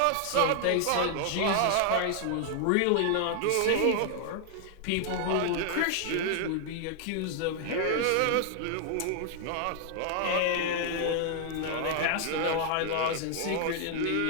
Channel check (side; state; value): both; different; correlation 0.00